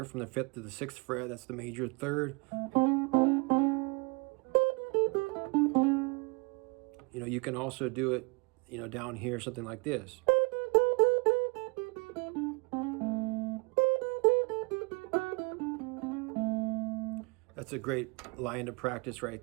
from the 5th to the 6th fret. That's the major third. You know, you can also do it, you know, down here, something like this. That's a great line to practice right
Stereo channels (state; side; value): quieter; left; 30.0 dB